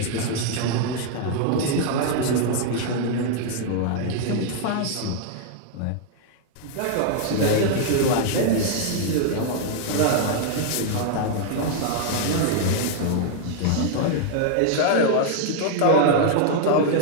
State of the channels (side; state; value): both; different; correlation -0.01